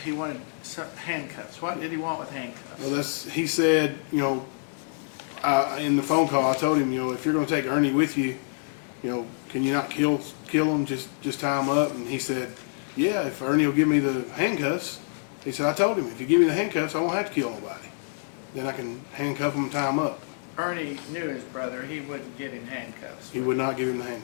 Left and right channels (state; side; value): silent; right; digital silence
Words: he wanted handcuffs? What did he want with handcuffs? Well, he said, you know, in the phone call, I told him, if you're going to take Ernie with you, can you not kill him? Just tie him up. And he said, yeah, if Ernie will give me the handcuffs. He said, I told him, if you give me the handcuffs, I won't have to kill nobody. Then I can handcuff him and tie him up. Ernie knew his brother, he wouldn't get in handcuffs. He would not give him the